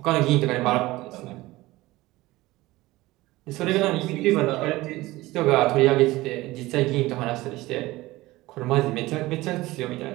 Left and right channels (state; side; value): quieter; left; 19.0 dB